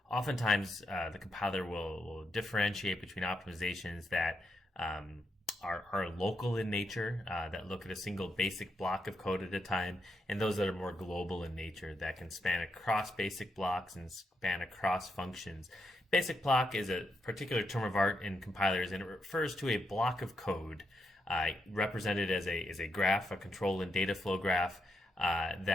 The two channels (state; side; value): normal; both; correlation 0.82